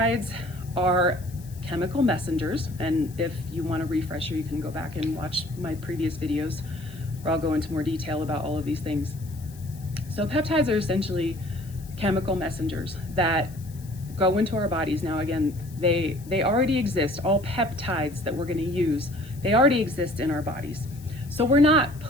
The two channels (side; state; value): left; noise; hiss, 22 dB below the sound